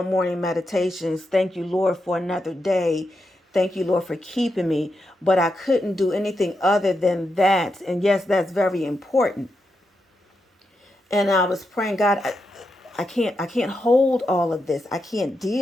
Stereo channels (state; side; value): normal; both; correlation 0.85